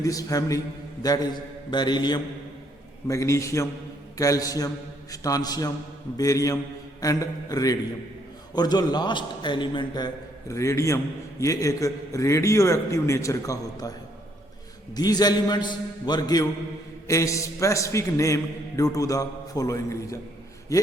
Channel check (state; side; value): normal; both; correlation 0.69